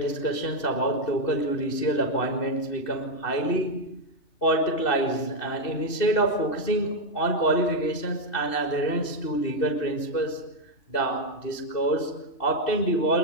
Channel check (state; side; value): late; right; 2.6 ms